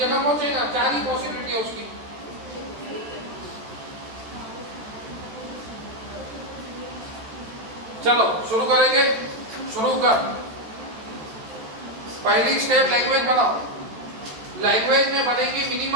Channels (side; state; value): left; late; 13 ms